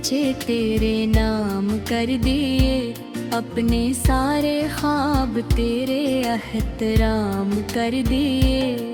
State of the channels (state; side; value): identical; both; correlation 1.00